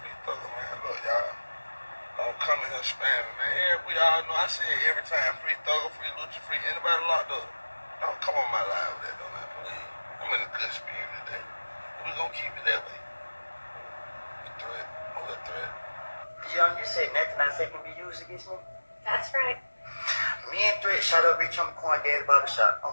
free Thugger, man? Look, y'all. Don't come in here spamming, man. We all know I say it every time. Free Thugger, free Lucha, free anybody locked up. Don't come on my live with that, though, man. Please. I'm in a good spirit today. We're going to keep it that way. Threat. Who's a threat? Young, you said nothing I say can be used against me? That's right. Me and Threat shot up Rich on the Quan Daddy Barbershop on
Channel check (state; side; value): inverted; both; correlation -1.00